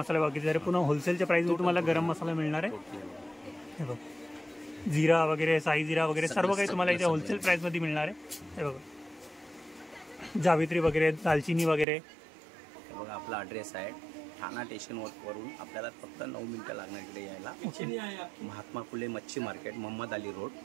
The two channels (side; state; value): left; drops out; at 11.9 s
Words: बाकी जरा पुन्हा होलसेलच्या प्राइसमध्ये तुम्हाला गरम मसाला मिळणार आहे. हे बघा, जिरा वगैरे, साई जिरा वगैरे सर्व काही तुम्हाला इथे होलसेल प्राइसमध्ये मिळणार आहे. हे बघा, जावित्री वगैरे, दालचिनी वगैरे. हे बघा, आपला ॲड्रेस आहे ठाणा स्टेशन वरून आपल्याला फक्त 9 मिनिटं लागणार इकडे यायला. महात्मा फुले मच्छी market, Mohammed Ali road,